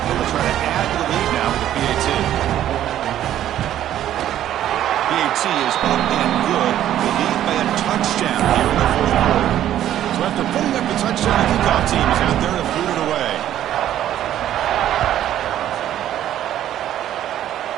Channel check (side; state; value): left; quieter; 11.8 dB